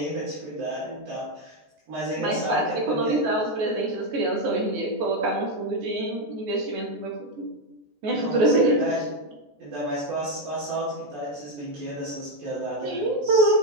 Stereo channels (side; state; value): left; late; 14 ms